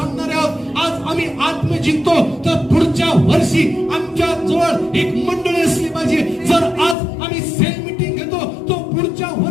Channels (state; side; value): drops out; right; at 7.0 s